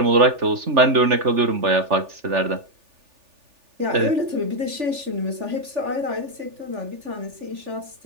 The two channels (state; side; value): late; left; 3.4 ms